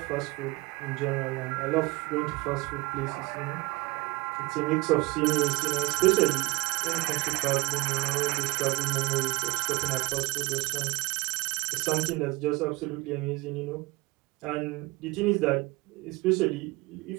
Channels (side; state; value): left; quieter; 24.0 dB